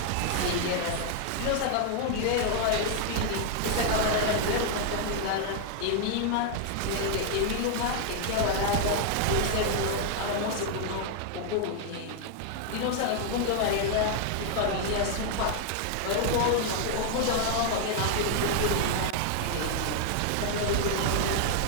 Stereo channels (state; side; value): different; both; correlation 0.00